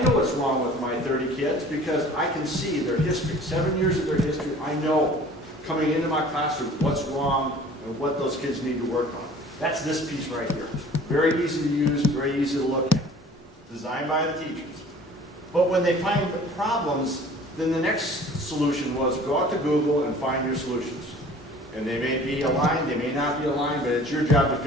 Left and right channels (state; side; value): normal; both; correlation 0.48